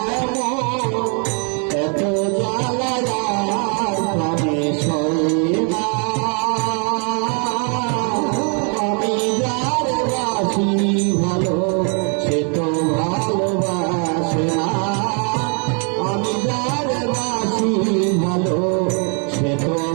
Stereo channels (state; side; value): quieter; left; 38.9 dB